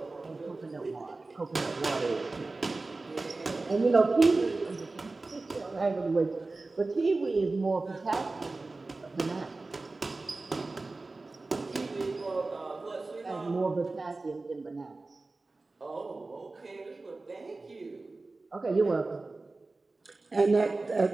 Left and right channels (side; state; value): left; quieter; 3.4 dB